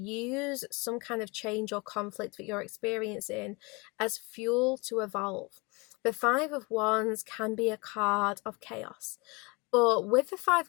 some kind of change or conflict that you're experiencing as fuel to evolve. The Five of Wands can be a card of chaos, but with the Five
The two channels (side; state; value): right; quieter; 27.6 dB